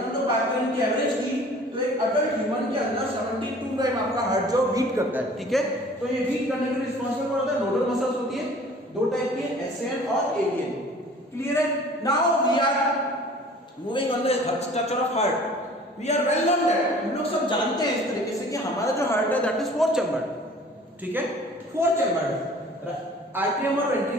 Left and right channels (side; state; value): both; normal; correlation 0.48